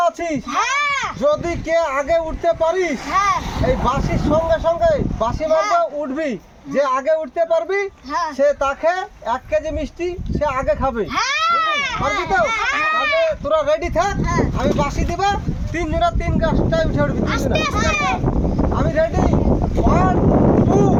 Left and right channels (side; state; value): both; identical; correlation 1.00